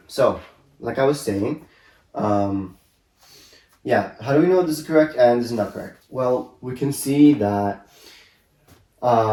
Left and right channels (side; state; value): both; identical; correlation 1.00